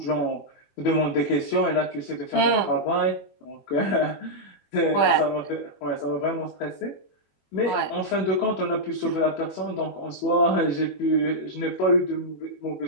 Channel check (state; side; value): late; right; 21 ms